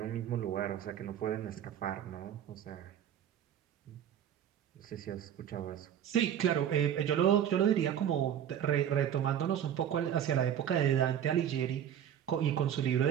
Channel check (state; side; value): quieter; left; 9.7 dB